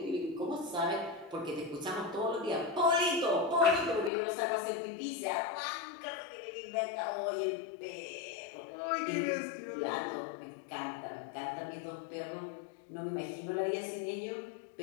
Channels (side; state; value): right; drops out; at 4.1 s